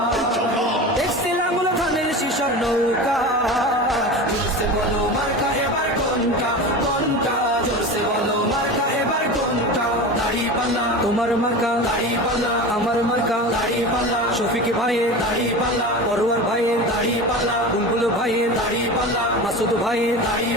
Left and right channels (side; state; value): both; normal; correlation 0.29